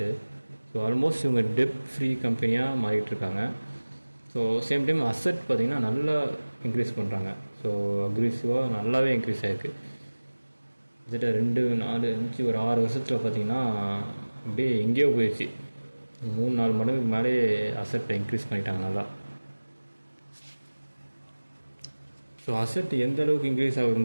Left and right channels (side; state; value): both; inverted; correlation -1.00